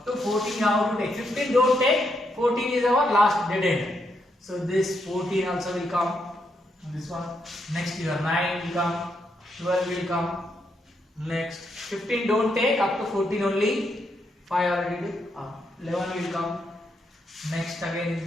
to 14 you have to take. 15 don't take. 14 is our last dead end. So this 14 also will come. This one. Next your 9 will come. 12 will come. Next 15 don't take. Up to 14 only. 5 already did. 11 will come. Next again in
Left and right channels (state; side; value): normal; both; correlation 0.79